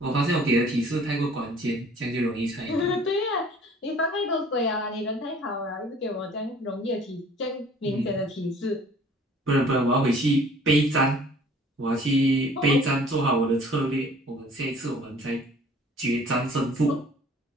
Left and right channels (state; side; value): normal; both; correlation 0.52